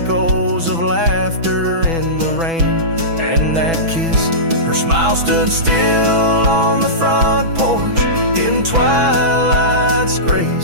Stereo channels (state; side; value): late; left; 6.1 ms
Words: of laughter in the rain and that kiss. Her smile stood still on the front porch in twilight's